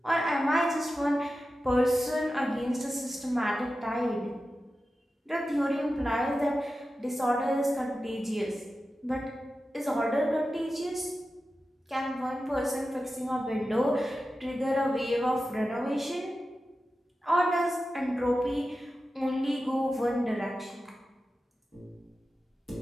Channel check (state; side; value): normal; both; correlation 0.92